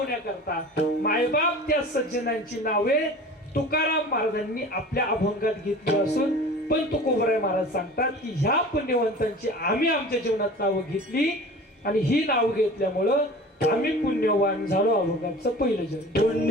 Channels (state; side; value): normal; both; correlation 0.40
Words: मायबाप त्या सज्जनांची नावे तुकाराम महाराजांनी आपल्या अभंगात घेतली असून पण तुकोबराय महाराज सांगतात की ह्या पुण्यवंतांची आम्ही आमच्या जीवनात नावं घेतली आणि ही नावं घेतल्यामुळं आम्ही पुण्यवान झालो. अभंगाचं पहिलं जन्म.